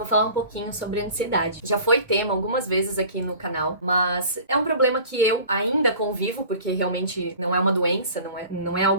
falar um pouquinho sobre ansiedade. Já foi tema algumas vezes aqui no canal, mas é um problema que eu ainda convivo, porque realmente não é uma doença, não é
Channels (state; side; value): inverted; both; correlation -0.43